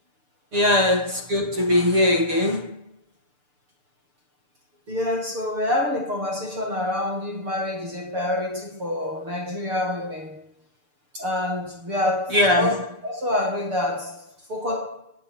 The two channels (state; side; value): late; left; 6.8 ms